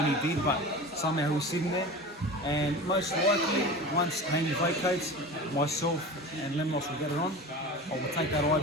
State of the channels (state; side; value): normal; both; correlation 0.33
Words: he did, but somehow he's sitting there. And most likely, once Haney vacates, myself and Lemnos will get it on. I will take that